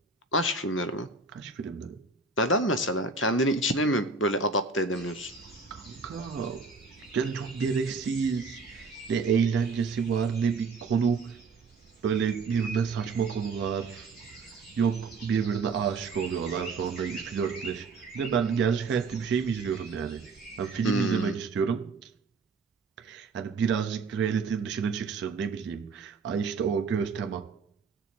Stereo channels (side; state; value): left; quieter; 4.3 dB